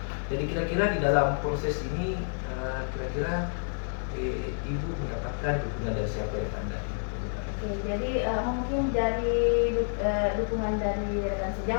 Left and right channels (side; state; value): right; silent; digital silence